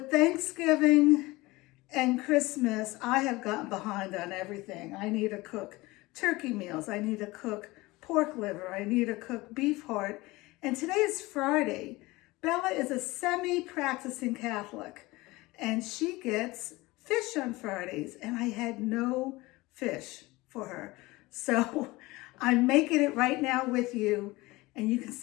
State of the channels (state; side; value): quieter; right; 21.1 dB